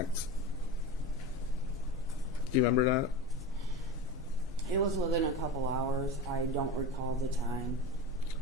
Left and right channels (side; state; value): both; normal; correlation 0.27